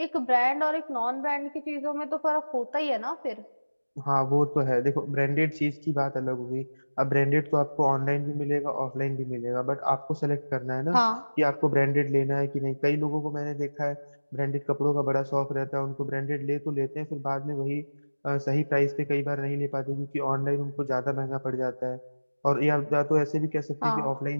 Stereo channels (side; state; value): both; inverted; correlation -1.00